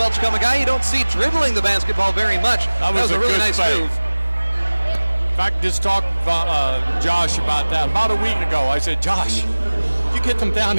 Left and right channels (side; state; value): both; inverted; correlation -1.00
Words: a guy you don't see dribbling the basketball very much. That was a really nice move. In fact, just talked to Josh about that. About a week ago, I said, Josh, you get them down